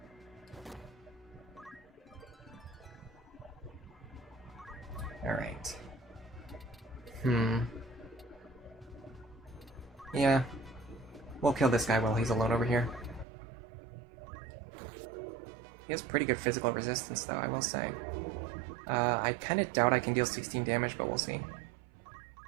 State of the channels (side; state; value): left; drops out; at 13.2 s